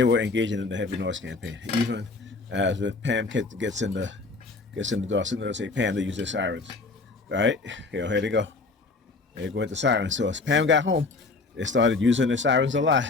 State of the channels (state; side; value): quieter; right; 3.8 dB